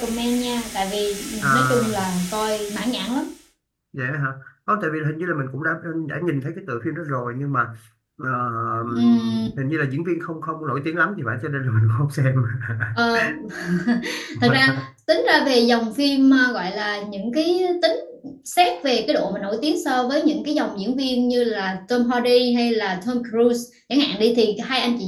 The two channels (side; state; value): both; identical; correlation 1.00